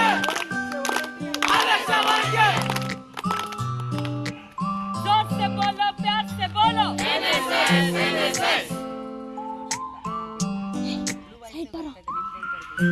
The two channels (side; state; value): both; identical; correlation 1.00